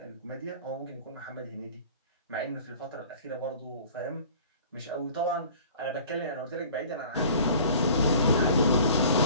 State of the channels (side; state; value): both; inverted; correlation -0.47